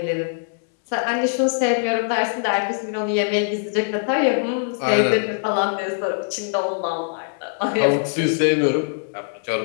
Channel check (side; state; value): right; silent; digital silence